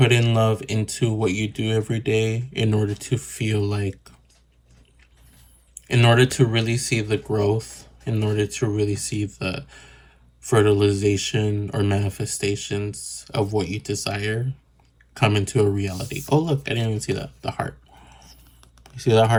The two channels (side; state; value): both; identical; correlation 1.00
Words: in love into what you do every day in order to feel like, in order to really see the growth, in order to really see the fertilization or manifestations of what you desire come into a reality. Oh, look, I didn't even see that. The heart. You see that